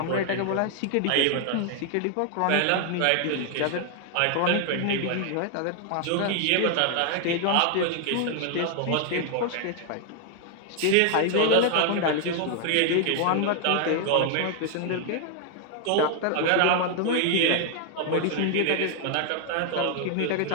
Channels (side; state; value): both; different; correlation 0.00